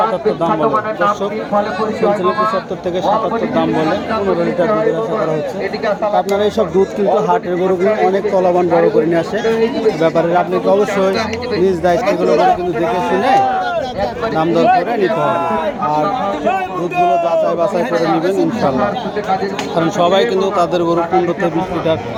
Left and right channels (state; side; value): identical; both; correlation 1.00